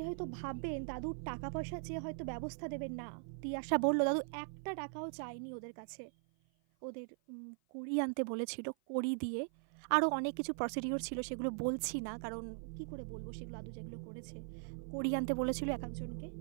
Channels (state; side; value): silent; left; 51 dB below the other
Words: হয়তো ভাববেন দাদুর টাকা পয়সা চেয়ে হয়তো ব্যবস্থা দেবেন, না। তিয়াশা বলল দাদু একটা টাকাও চায়নি ওদের কাছে, ওদের কড়ি আনতে বলেছিল, কড়ি দিয়ে আরও অনেক কিছু প্রসিডিওর ছিল, সেগুলো বলছি না কারণ কি করে বলবো সেগুলো, দাদু যেগুলো করেছে। কড়ি আনতে বলেছিল এক একজনকে,